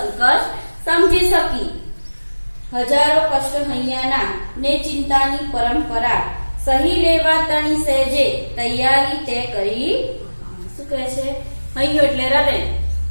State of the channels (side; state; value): both; inverted; correlation -1.00